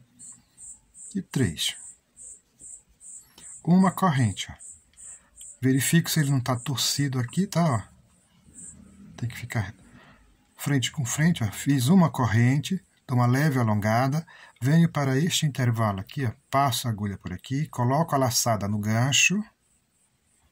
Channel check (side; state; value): both; identical; correlation 1.00